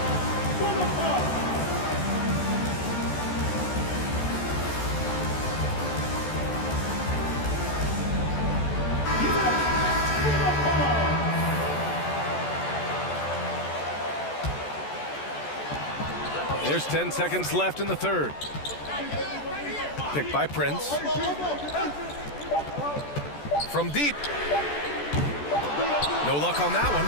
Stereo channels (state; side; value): late; right; 14 ms